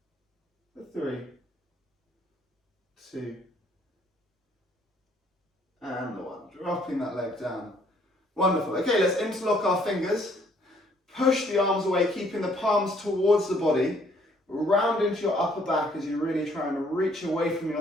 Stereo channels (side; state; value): both; normal; correlation 0.64